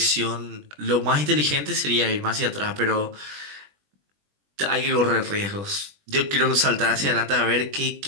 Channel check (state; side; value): late; left; 20 ms